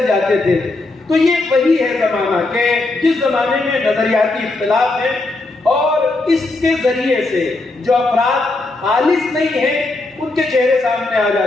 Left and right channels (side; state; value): right; quieter; 3.1 dB